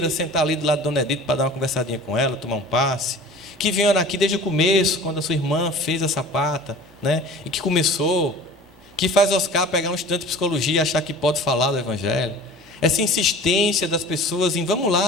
sentar ali do lado de Dona Edith para dar uma conversadinha com ela, tomar um passe, que vieram aqui desde o começo, quando a sua irmã fez a sapata, né? E que começou, que faz Oscar pegar um estudante de psicologia e achar que pode falar do Evangelho. essa insistência das pessoas em vamos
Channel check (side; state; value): both; normal; correlation 0.42